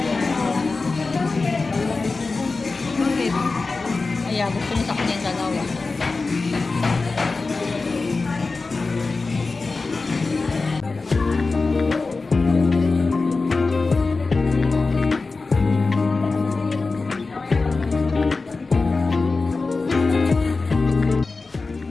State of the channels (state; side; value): quieter; right; 3.8 dB